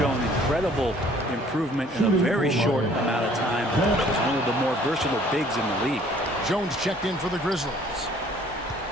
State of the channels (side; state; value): both; normal; correlation 0.57